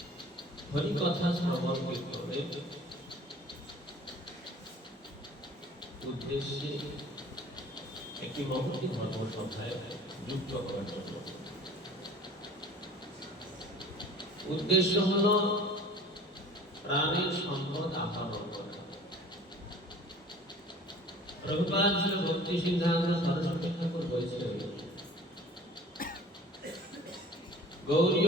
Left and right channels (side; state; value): both; normal; correlation 0.46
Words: হরি কথা শ্রবণ কীর্তনের উদ্দেশ্যে একটি মহতী ধর্মসভায় যুক্ত হওয়ার জন্য। উদ্দেশ্য হল প্রাণের সম্পদ আহরণ করা। প্রভুপাদ শ্রী ভক্তি সিদ্ধান্ত সরস্বতী ঠাকুর বলেছিলেন,